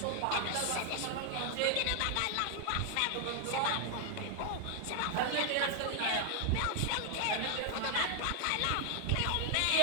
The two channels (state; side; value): different; both; correlation 0.00